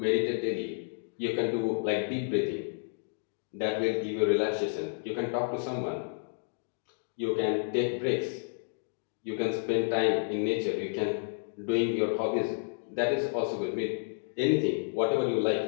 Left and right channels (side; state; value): right; silent; digital silence